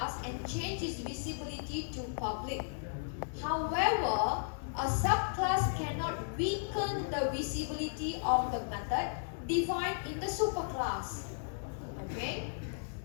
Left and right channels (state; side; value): silent; right; 54 dB below the other